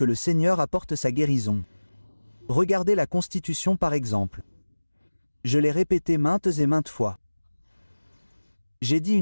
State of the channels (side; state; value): both; inverted; correlation -1.00